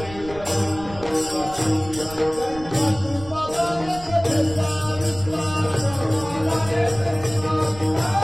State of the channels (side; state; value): right; noise; rumble, 16 dB below the sound